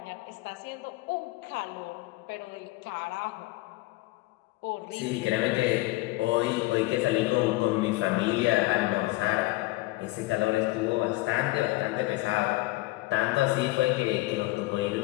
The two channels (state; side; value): quieter; right; 20.4 dB